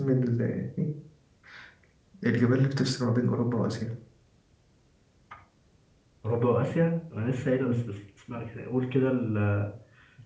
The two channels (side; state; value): both; identical; correlation 1.00